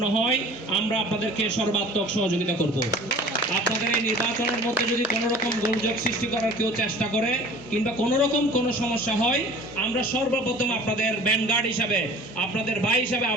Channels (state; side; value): normal; both; correlation 0.45